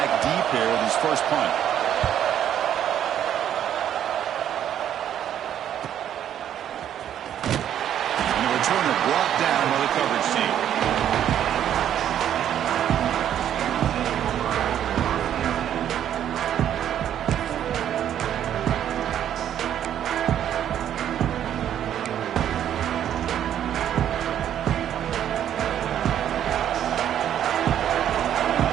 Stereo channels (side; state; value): left; quieter; 10.3 dB